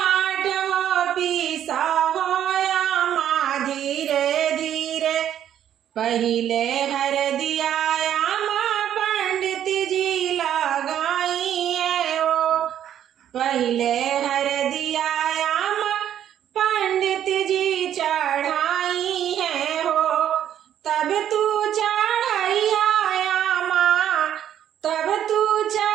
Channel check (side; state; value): left; quieter; 10.4 dB